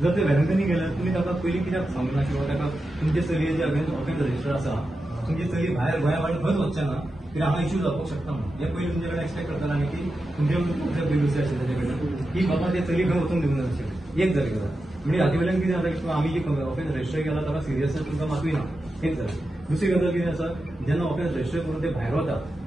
जर ते वेलंकनी गेल्यार तुमी ताका पयलीं कित्याक सांगना किंवा ताका तुमचे चलयेचे अगेन्स्ट ऑफेन्स रजिस्टर आसा तुमची चली भायर गोंया भायर खंयच वचचें ना कित्याक हांगा इश्यू जावपाक शकता म्हणून हे पयलीं तुमचे कडेन एक्सपेक्ट करताले आनी की तुमचे प्रिव्युसी आशिल्ले तेजे कडेन की बाबा ते चली खंय वचूंक दिवंक नाशिल्ले एक जाली गजाल म्हणजे हाचे वयल्यान कितें जाता की आमी जी ऑफेन्स रजिस्टर केला ताका सिरियसनेस तुमकां मातूय ना एक जाली दुसरी गजाल कितें आसा जेन्ना ऑफेन्स रजिस्टर करून ते भायर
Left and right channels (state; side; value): normal; both; correlation 0.90